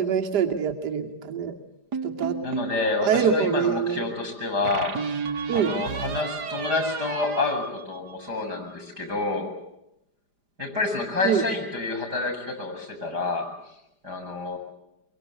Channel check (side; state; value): left; late; 4.9 ms